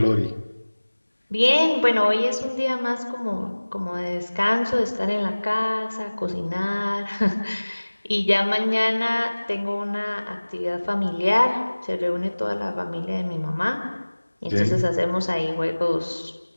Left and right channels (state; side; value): inverted; both; correlation -1.00